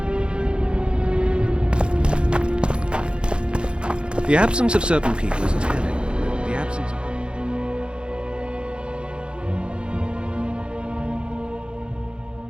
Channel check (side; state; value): left; late; 0.054 ms